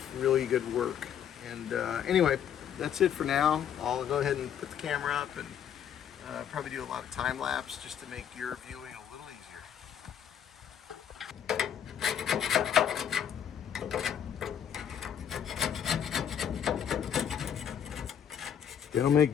really good work. And anyway, that's it for now. I'll go ahead and put the camera up and probably do a lot of time lapse just to make your viewing a little easier. They don't make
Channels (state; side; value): quieter; right; 8.9 dB